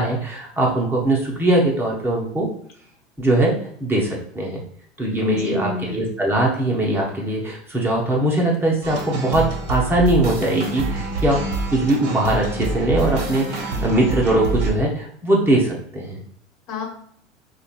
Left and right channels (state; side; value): normal; both; correlation 0.42